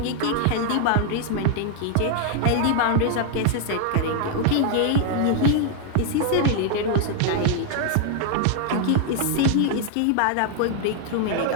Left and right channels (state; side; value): different; both; correlation 0.00